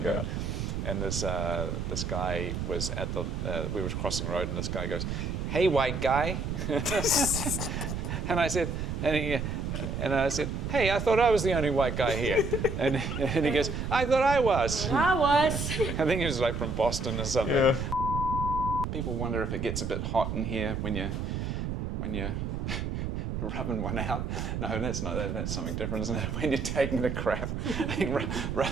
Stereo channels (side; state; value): right; noise; rumble, 3 dB below the sound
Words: and this guy was at the we were crossing the road, and this guy goes, "Hey, white guy," and I said, "Hey, I thought I was the only white guy here," and he goes, "I thought I was." I was. I think he was like from Boston or something. Yeah. People wonder if it gets a bit hot in here when you're rubbing one out. No, that's not. That's something different, isn't it? When you're taking the crap, I think